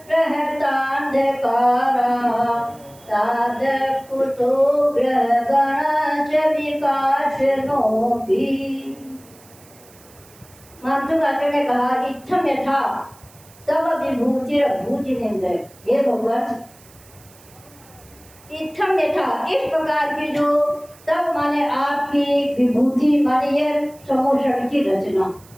रहतान्धकारा तादृक् कुतो ग्रहगणश्च विकासनोऽपि। मानतुंग आचार्य ने कहा इच्छम यथा तब विभूतिरभूजिनेन्द्र, हे भगवान इत्थम यथा, इस प्रकार की जो तब माने आपकी विभूति माने ये समोषण की रचना।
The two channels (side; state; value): right; noise; hiss, 25 dB below the sound